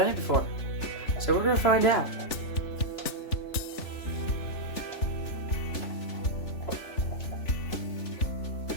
it before, so we're going to find out.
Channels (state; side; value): late; right; 3.4 ms